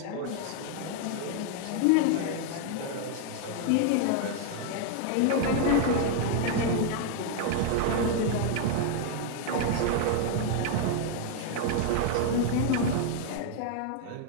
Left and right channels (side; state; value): both; different; correlation 0.00